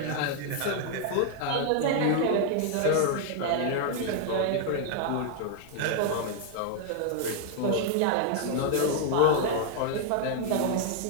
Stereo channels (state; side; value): different; both; correlation 0.00